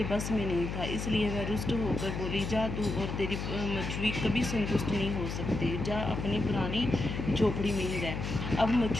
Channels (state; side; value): noise; left; hum, 4 dB below the sound